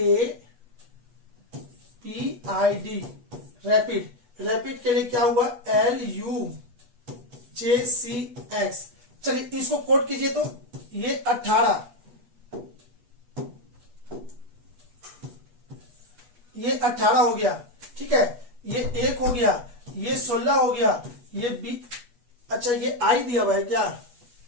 RAPID, रैपिड। रैपिड के लिए क्या हुआ, LUJCX। चलिए इसको कोड कीजिए, तो ये 18, ये 18 हो गया। ठीक है, ये 1 हो गया, ये 16 हो गया, ये 20। अच्छा ये आई दिया हुआ है क्या,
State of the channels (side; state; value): left; late; 8.2 ms